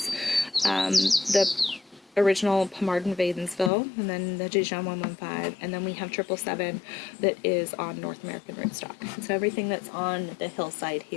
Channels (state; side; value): drops out; right; at 3.7 s